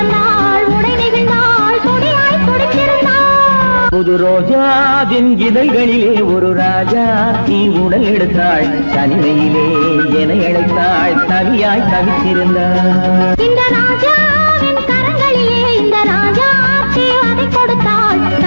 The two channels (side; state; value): both; inverted; correlation -1.00